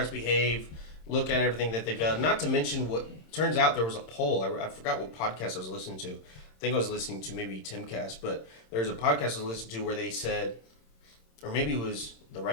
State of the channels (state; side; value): late; right; 26 ms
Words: behave. Look at everything that they've done. Not to mention what turns out there was a poll. I forgot what podcast I was listening to. I think I was listening to maybe Timcast, but there was a podcast I was listening to where they said, or maybe it was the